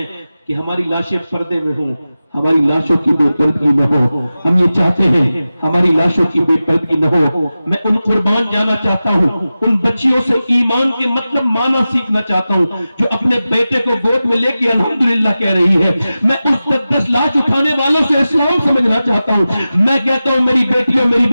کہ ہماری لاشیں پردے میں ہوں، ہماری لاشوں کی بے پردگی نہ ہو۔ ہم یہ چاہتے ہیں ہماری لاشوں کی بے پردگی نہ ہو۔ میں ان قربان جانا چاہتا ہوں، ان بچیوں سے ایمان کے مطلب معنی سیکھنا چاہتا ہوں جو اپنے بیٹے کو گود میں لے کے الحمدللہ کہہ رہی ہے۔ میں اس 10 لاش اٹھانے والوں سے اسلام سمجھنا چاہتا ہوں۔ میں کہتا ہوں میری بیٹیوں میری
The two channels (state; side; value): inverted; both; correlation -0.94